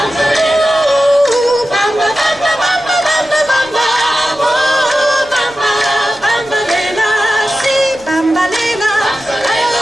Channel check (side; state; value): right; noise; rumble, 26 dB below the sound